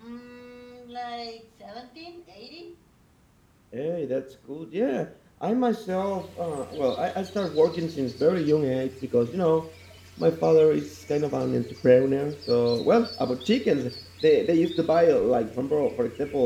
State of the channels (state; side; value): identical; both; correlation 1.00